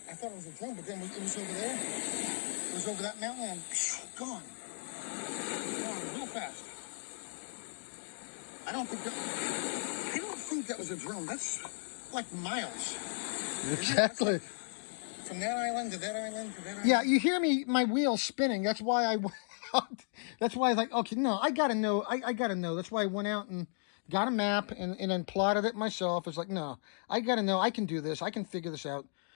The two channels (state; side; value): silent; right; digital silence